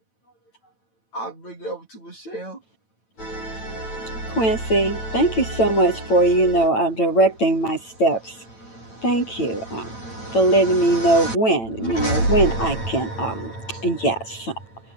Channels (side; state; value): right; late; 9.0 ms